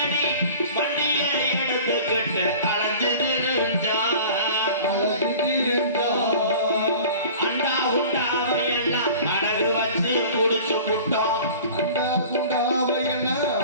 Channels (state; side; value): inverted; both; correlation -0.42